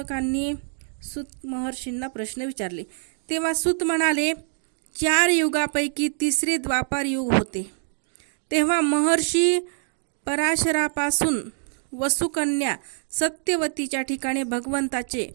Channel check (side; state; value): left; silent; digital silence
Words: सूत महर्षींना प्रश्न विचारले. तेव्हा सूत म्हणाले, 4 युगापैकी तिसरे द्वापार युग होते. तेव्हा महर्षी पराशरापासून वसुकन्या सत्यवतीच्या ठिकाणी भगवंताचे